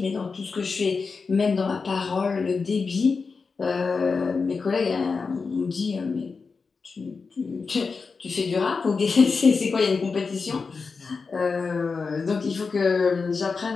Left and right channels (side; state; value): right; quieter; 4.8 dB